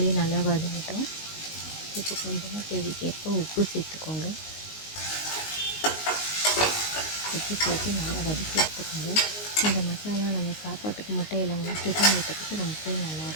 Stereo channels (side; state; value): right; late; 19 ms